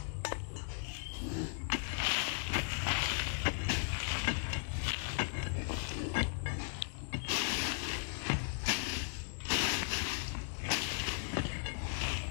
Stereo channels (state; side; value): silent; right; digital silence